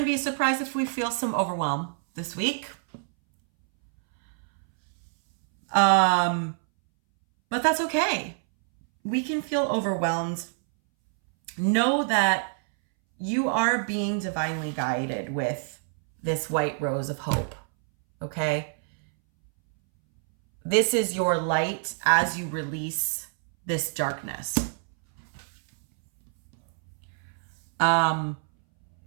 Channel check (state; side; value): silent; left; 61 dB below the other